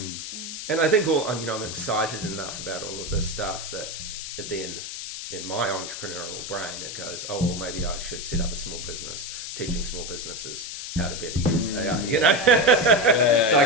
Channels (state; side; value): noise; left; hiss, 7 dB below the sound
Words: And I think I'm excited enough about all of this stuff that then in my entrepreneurial brain it goes, oh, well, maybe I should set up a small business, teaching small businesses how to better use AI, you know? So I